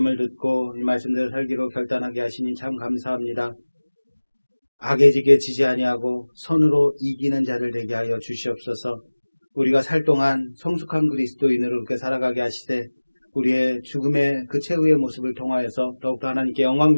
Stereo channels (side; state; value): both; inverted; correlation -1.00